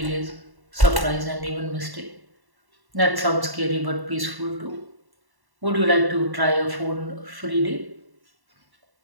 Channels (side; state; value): left; late; 1.1 ms